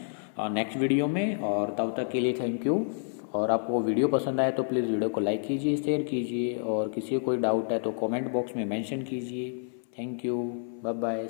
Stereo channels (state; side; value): silent; right; 59 dB below the other